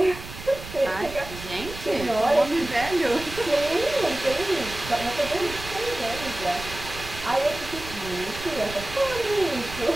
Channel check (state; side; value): noise; right; rumble, 12 dB below the sound